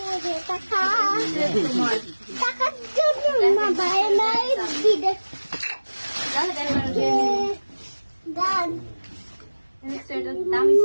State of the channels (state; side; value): inverted; both; correlation -1.00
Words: টাকা তোমার টাকার জন্য না ভাই নাই বিদেশ গান সোয়েটার, দামি